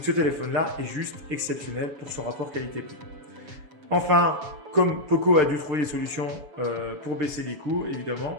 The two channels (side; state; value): left; late; 7.1 ms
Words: ce téléphone-là est juste exceptionnel pour son rapport qualité-prix. Enfin, comme Poco a dû trouver des solutions pour baisser les coûts,